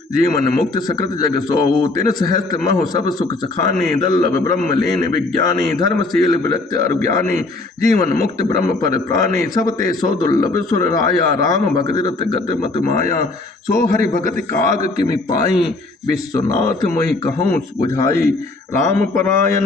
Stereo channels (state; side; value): quieter; right; 3.2 dB